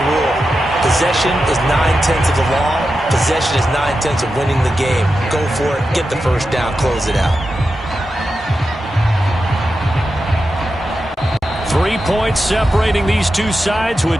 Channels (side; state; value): both; normal; correlation 0.90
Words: rule. Possession is 9/10 of the law. Possession is 9/10 of winning the game. Go for it, get the 1st down, close it out. 3 points separating these two sides